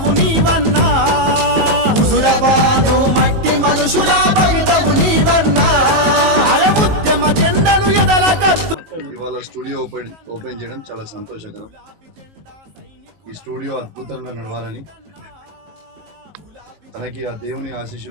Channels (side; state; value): left; late; 19 ms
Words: నీవన్నా హుజురాబాదు మట్టి మనుషుల భవితవు నీవన్నా అరే ఉద్యమ జెండను ఎదల కత్తు. ఇవాళ స్టూడియో ఓపెన్ చేయడం చాలా సంతోషకరం. ఈ స్టూడియో అద్భుతంగా నడవాలని, తనకి ఆ దేవుని